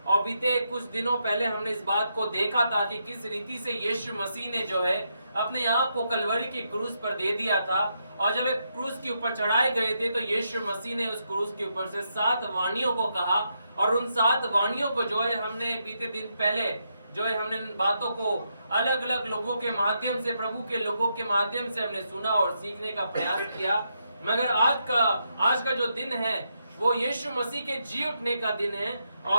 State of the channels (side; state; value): both; inverted; correlation -0.81